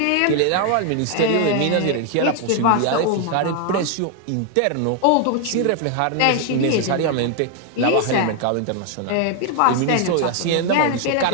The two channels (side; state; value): both; different; correlation 0.00